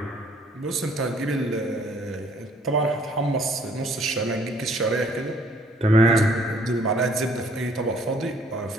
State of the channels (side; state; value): both; normal; correlation 0.61